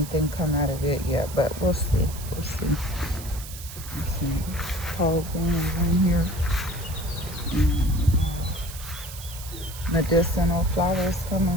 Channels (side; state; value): right; noise; hiss, 13 dB below the sound